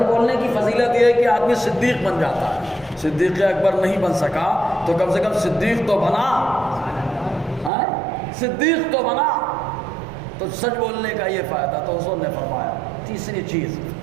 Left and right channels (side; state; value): left; drops out; at 7.7 s